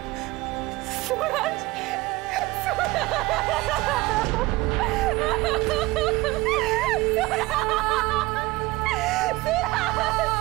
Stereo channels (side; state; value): left; quieter; 20.9 dB